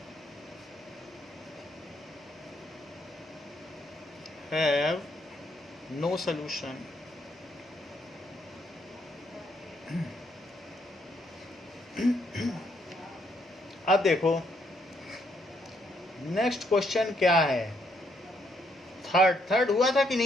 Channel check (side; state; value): both; normal; correlation 0.73